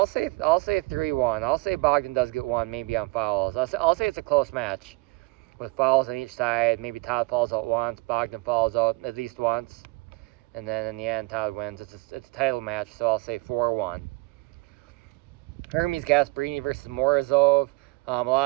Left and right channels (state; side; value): quieter; left; 24.2 dB